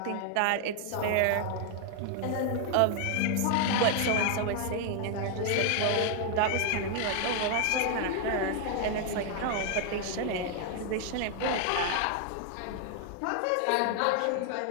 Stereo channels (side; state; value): both; different; correlation 0.00